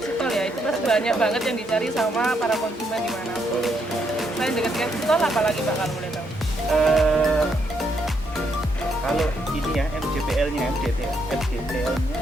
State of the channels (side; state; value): both; normal; correlation 0.76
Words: tol ya. Itu pasti banyak banget yang dicari sama para konsumen di mana. Selain dekat exit tol, apalagi Pak kalau boleh tahu? Kalau ini ya MJPL-nya lumayan